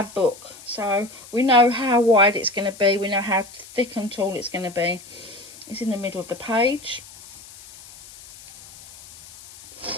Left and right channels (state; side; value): noise; left; hiss, 19 dB below the sound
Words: book. So we know how wide it's going to be. We know how thick and tall it's going to be. It's in the middle of the page.